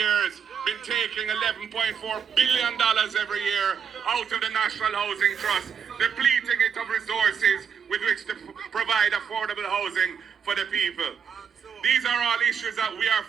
been taking $11.4 billion every year out of the National Housing Trust, depleting it of resources with which to provide affordable housing for the people. These are all issues that we are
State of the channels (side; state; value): left; quieter; 7.1 dB